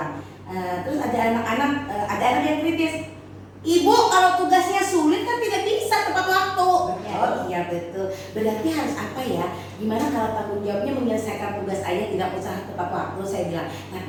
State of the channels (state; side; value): identical; both; correlation 1.00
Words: Terus ada anak yang kritis. Ibu, kalau tugasnya sulit kan tidak bisa tepat waktu. Oh iya betul. Berarti harus apa ya? Gimana kalau tanggung jawabnya menyelesaikan tugas aja, tidak usah tepat waktu, saya bilang. Tapi